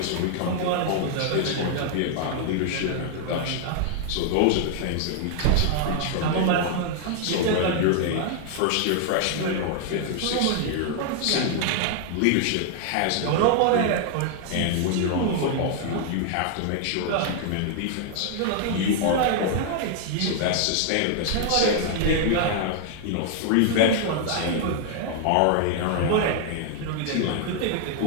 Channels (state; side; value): different; both; correlation 0.00